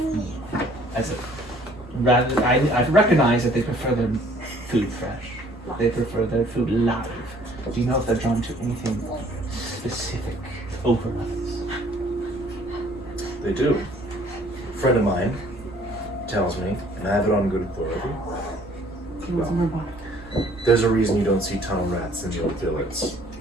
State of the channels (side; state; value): both; normal; correlation 0.58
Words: I recognize that they prefer their food fresh. They prefer their food live. Do you know if they're drawn to anything specific over others? They do. A friend of mine tells me, and I have it on good authority, there's a reason you don't see tunnel rats in the old village.